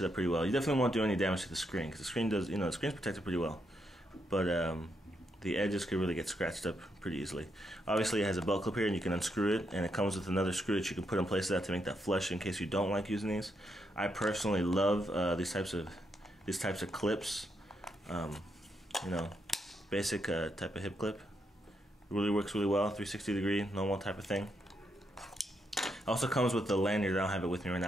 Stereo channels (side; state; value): both; normal; correlation 0.80